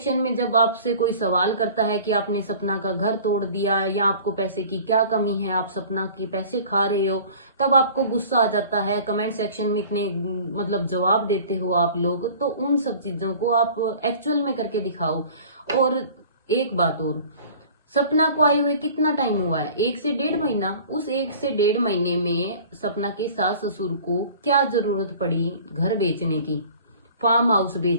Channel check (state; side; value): inverted; both; correlation -0.45